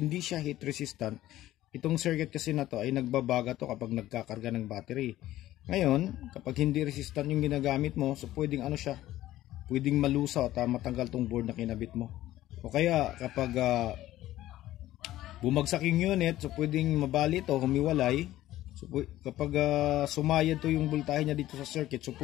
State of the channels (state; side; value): quieter; right; 14.7 dB